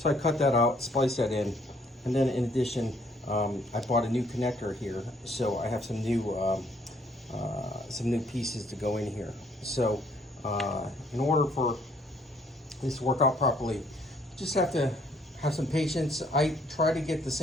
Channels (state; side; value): normal; both; correlation 0.65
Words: I cut that out, spliced that in, and then in addition, I bought a new connector here, so I have some new pieces to go in here. So in order for this to work out properly, just have to have some patience. I try to get the